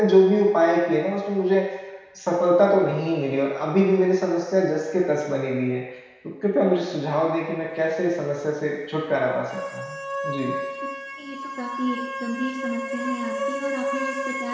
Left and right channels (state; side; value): identical; both; correlation 1.00